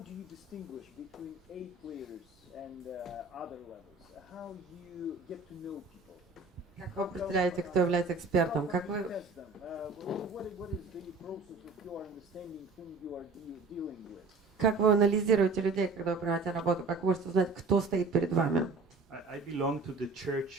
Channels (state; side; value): quieter; left; 3.9 dB